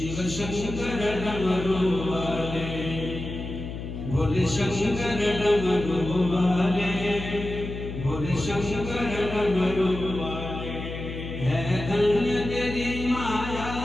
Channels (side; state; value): left; noise; hum, 8 dB below the sound